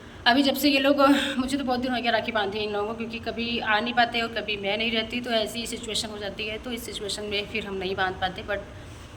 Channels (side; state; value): both; identical; correlation 1.00